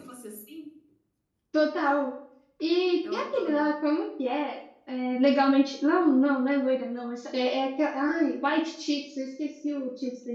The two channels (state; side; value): identical; both; correlation 1.00